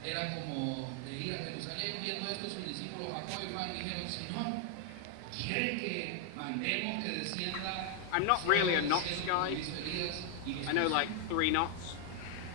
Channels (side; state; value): both; different; correlation 0.01